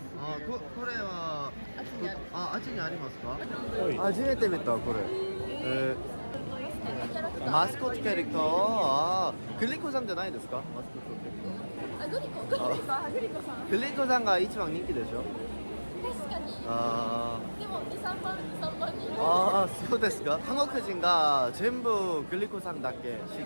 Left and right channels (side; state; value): both; inverted; correlation -1.00